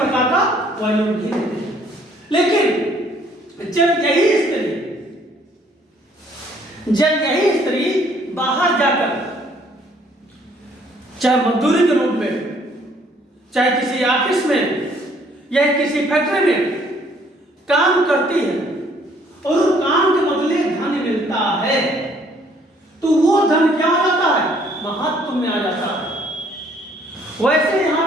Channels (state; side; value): normal; both; correlation 0.62